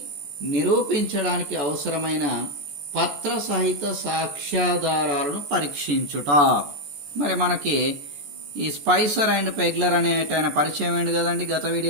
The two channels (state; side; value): late; left; 14 ms